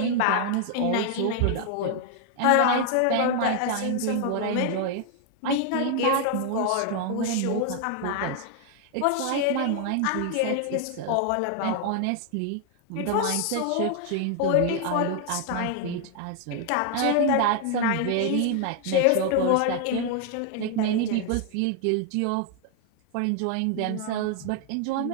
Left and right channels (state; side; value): different; both; correlation 0.00